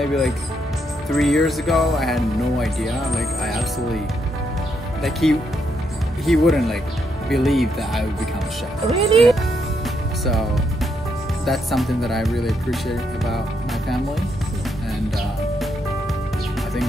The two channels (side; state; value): both; normal; correlation 0.77